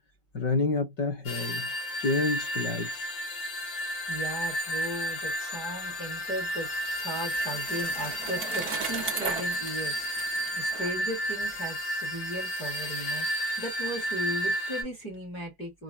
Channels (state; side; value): late; right; 5.6 ms